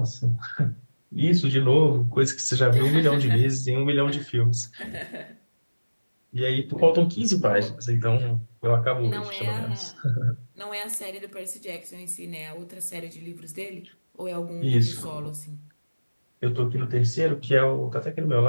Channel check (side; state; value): both; inverted; correlation -1.00